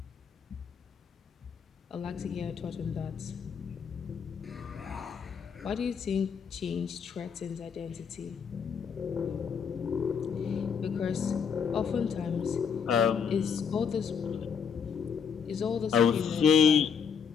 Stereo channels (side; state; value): right; quieter; 6.8 dB